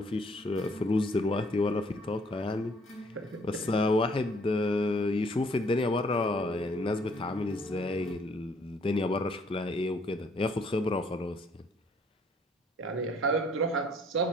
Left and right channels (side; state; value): both; normal; correlation 0.63